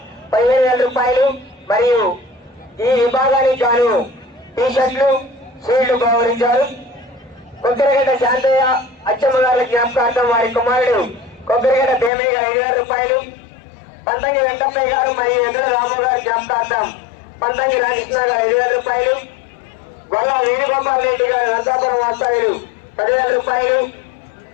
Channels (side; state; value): right; drops out; at 12.1 s